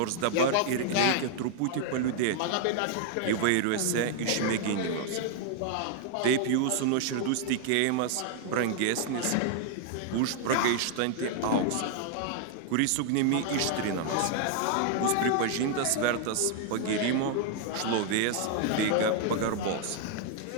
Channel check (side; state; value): both; different; correlation 0.00